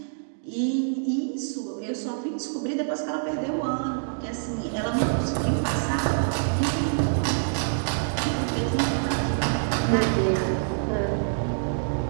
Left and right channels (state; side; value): silent; left; digital silence